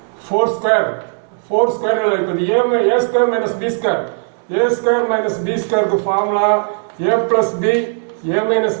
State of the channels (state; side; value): silent; left; digital silence